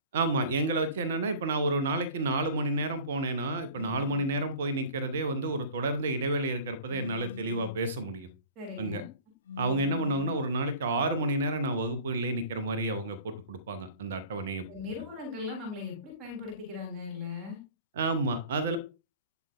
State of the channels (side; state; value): both; inverted; correlation -0.43